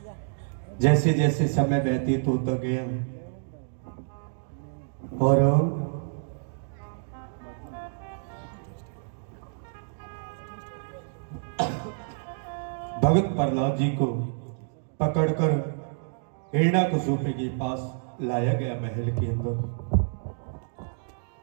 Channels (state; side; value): silent; left; digital silence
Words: जैसे जैसे समय व्यतीत होता गया और भगत प्रहलाद जी को पकड़कर हिरण्याकशिपु के पास लाया गया महल के अंदर।